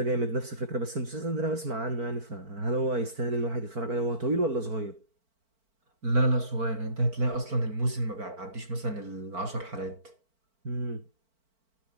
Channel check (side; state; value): left; late; 4.5 ms